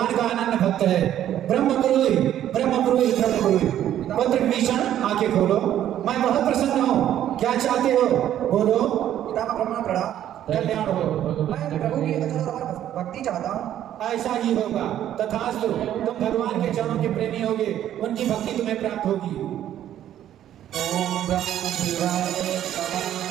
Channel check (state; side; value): quieter; left; 11.4 dB